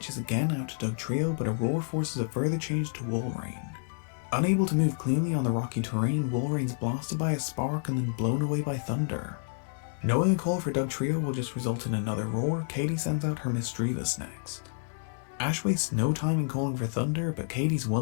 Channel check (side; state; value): right; silent; digital silence